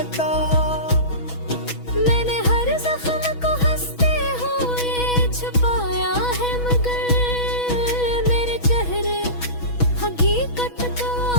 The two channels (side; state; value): right; late; 6.1 ms